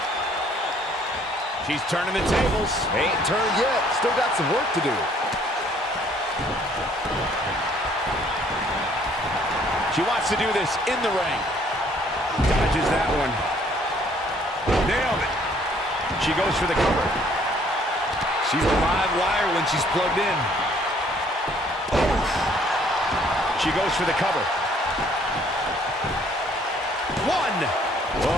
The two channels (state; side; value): normal; both; correlation 0.61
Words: She's turning the tables. Ain't turned yet. Still got some work to do. She wants to do this in the ring. Dodges that one. Nailed it. She goes for the cover. She's a live wire when she's plugged in. She goes for the cover. One.